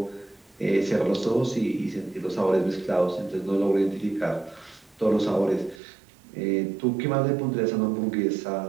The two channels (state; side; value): drops out; left; at 5.8 s